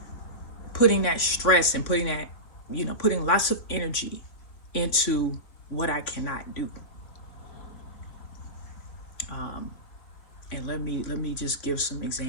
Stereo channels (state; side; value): late; right; 3.4 ms